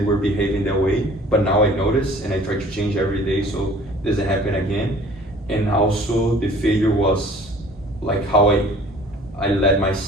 were behaving that way. But now I notice and I try to change every day so it doesn't happen again. And also the failure was like how I let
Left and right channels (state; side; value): normal; both; correlation 0.50